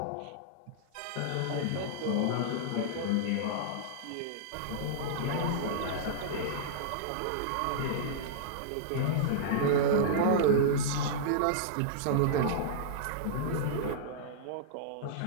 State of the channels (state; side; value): different; both; correlation -0.02